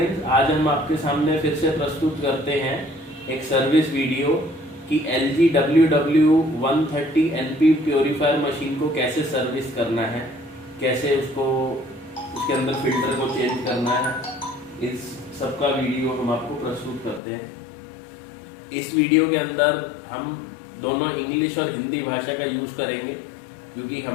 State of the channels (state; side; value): drops out; right; at 17.2 s